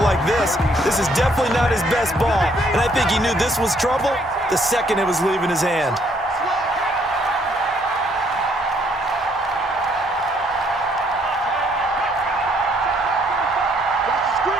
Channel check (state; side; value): normal; both; correlation 0.67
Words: this. This is definitely not his best ball, and I think he knew this was trouble the second it was leaving his hand.